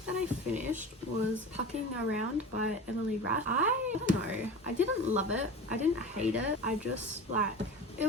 that I finished was Pucking Around by Emily Rath. I don't know. I didn't love it. I didn't hate it. I just it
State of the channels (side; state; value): both; normal; correlation 0.32